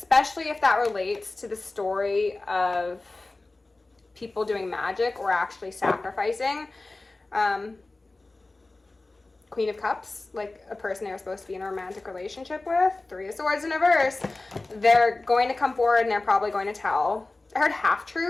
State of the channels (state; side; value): quieter; right; 3.1 dB